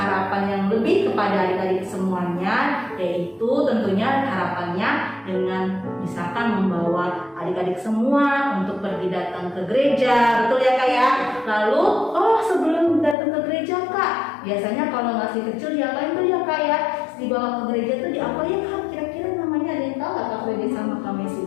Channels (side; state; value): right; drops out; at 13.2 s